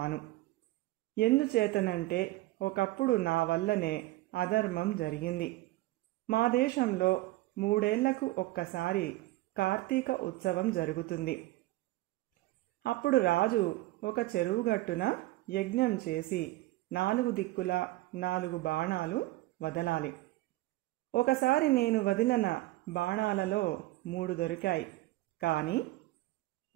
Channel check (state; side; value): quieter; left; 18.4 dB